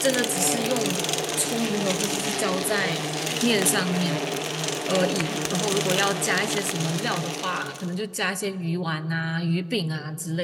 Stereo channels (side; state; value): both; identical; correlation 1.00